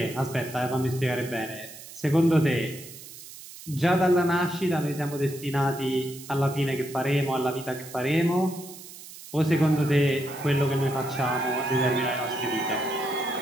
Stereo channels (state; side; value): noise; right; hiss, 16 dB below the sound